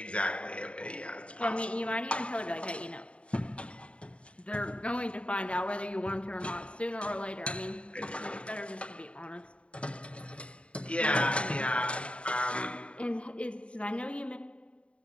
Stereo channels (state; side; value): late; right; 0.060 ms